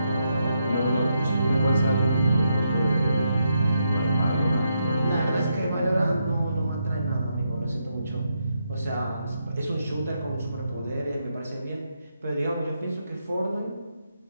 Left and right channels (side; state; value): both; inverted; correlation -0.81